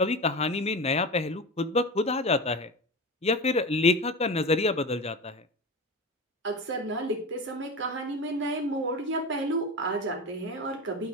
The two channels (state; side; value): normal; both; correlation 0.26